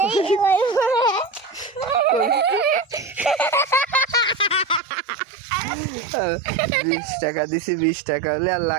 वही 20 টাকা দিছি 20 টাকা হলে আর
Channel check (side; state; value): left; drops out; at 4.8 s